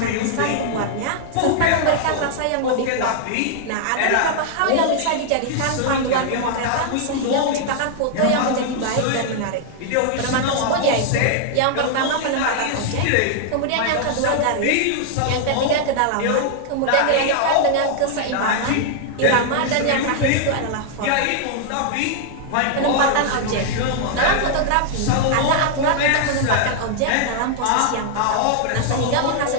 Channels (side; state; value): both; different; correlation -0.01